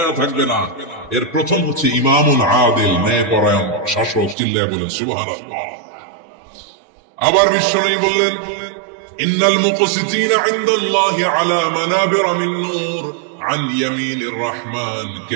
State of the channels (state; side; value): drops out; left; at 4.4 s